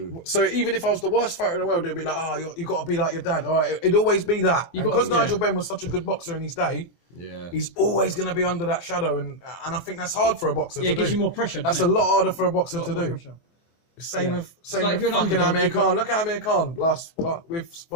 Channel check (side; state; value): right; late; 24 ms